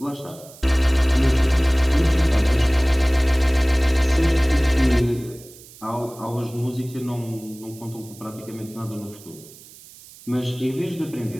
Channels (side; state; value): right; noise; hiss, 21 dB below the sound